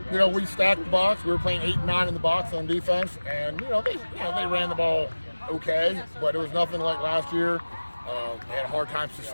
we stacked the box. We were playing 8 and 9 in the box on defense, and they ran the ball okay, but it was nothing like last year. They had a hard time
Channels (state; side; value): inverted; both; correlation -1.00